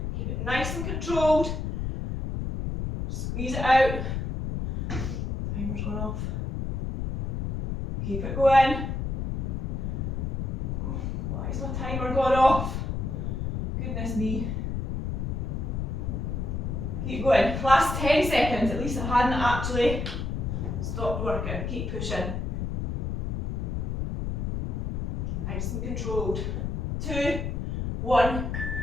keep it nice and controlled, squeeze it out, timer's gone off, keep it going. Why is my timer gone off? Goodness me. Keep going, last 10 seconds, at least I hadn't actually stopped working. Keep pushing. Nice and controlled. 2, 1,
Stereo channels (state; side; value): noise; left; rumble, 2 dB below the sound